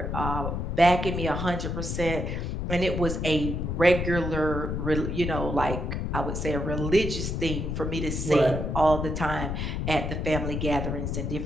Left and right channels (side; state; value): left; noise; rumble, 2 dB below the sound